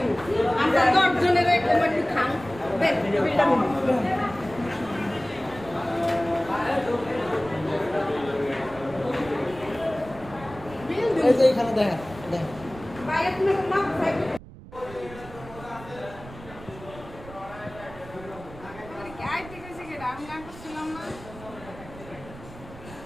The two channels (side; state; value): right; noise; rumble, 17 dB below the sound